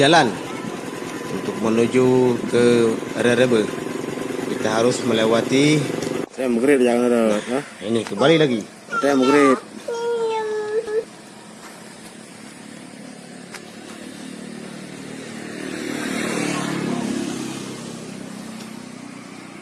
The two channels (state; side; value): identical; both; correlation 1.00